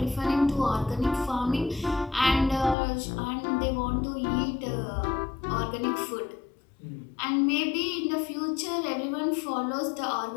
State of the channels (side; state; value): right; drops out; at 2.8 s